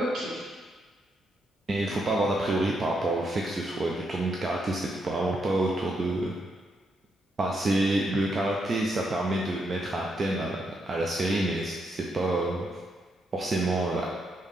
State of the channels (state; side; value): normal; both; correlation 0.79